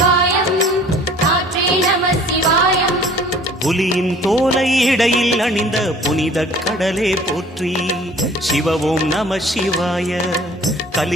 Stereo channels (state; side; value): normal; both; correlation 0.50